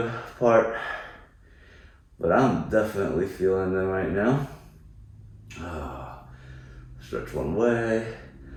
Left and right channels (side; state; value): both; identical; correlation 1.00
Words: part, but I'm definitely feeling them right now. Stretch one way,